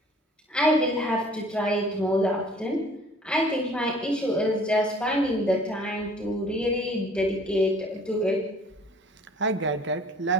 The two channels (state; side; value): normal; both; correlation 0.53